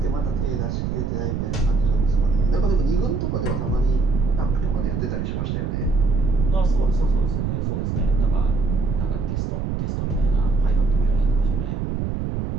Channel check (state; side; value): noise; right; rumble, 2 dB below the sound